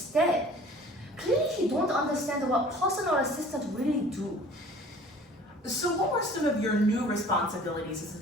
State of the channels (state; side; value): normal; both; correlation 0.48